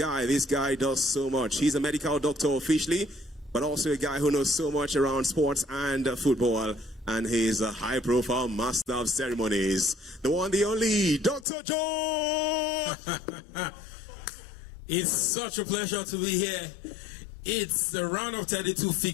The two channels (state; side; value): drops out; right; at 11.5 s